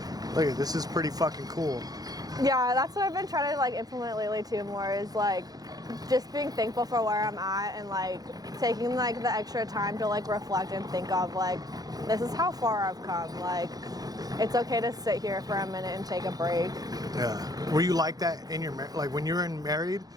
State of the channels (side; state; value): left; late; 0.18 ms